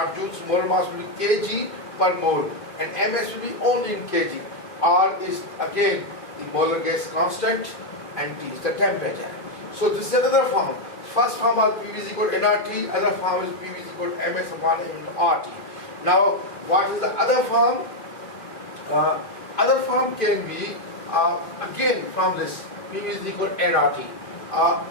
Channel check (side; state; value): right; late; 2.5 ms